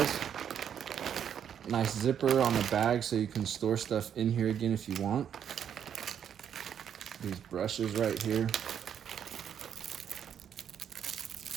Nice zipper on the bag so you can store stuff in here again if you want. These brushes right here.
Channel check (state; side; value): quieter; left; 8.7 dB